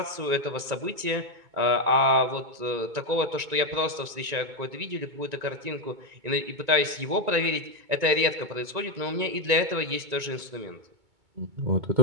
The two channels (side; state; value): left; late; 2.2 ms